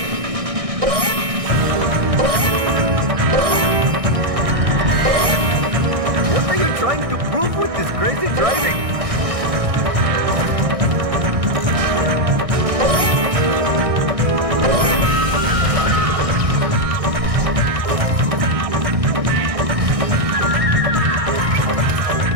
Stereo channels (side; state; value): left; late; 1.6 ms